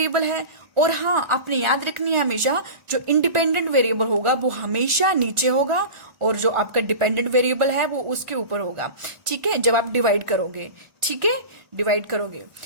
है। और हाँ आपने याद रखनी है हमेशा, जो इंडिपेंडेंट वेरिएबल होगा वो हमेशा नीचे होगा, और जो आपका डिपेंडेंट वेरिएबल है वो उसके ऊपर होगा, ठीक है, जब आप डिवाइड करोगे, ठीक है, डिवाइड करोगे।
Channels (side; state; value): left; late; 1.4 ms